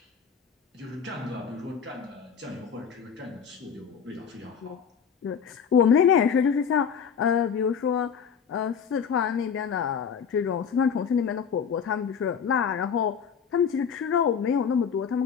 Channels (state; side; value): quieter; right; 7.0 dB